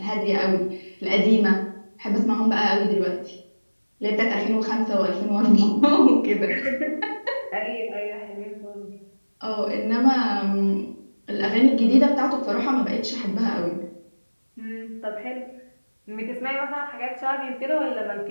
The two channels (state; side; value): inverted; both; correlation -1.00